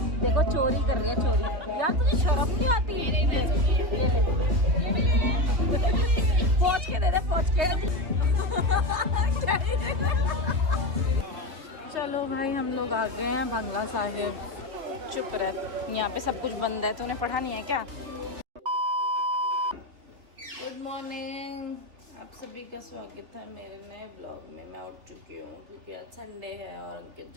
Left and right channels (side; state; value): left; late; 3.5 ms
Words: देखो, चोरी कर रही है, चोरी। यार तुझे शर्म नहीं आती? ये ले पहुंच के दे दे, पहुंच के। चलो भाई, हम लोग आ गए हैं बंगला साहिब। चुप रह, यहाँ पे सब कुछ बंद है। तूने पढ़ा नहीं है क्या? गुड मॉर्निंग, आप सभी का स्वागत है मेरे नए ब्लॉग में। मैं उठ चुकी हूँ क्योंकि आज संडे है और अंकित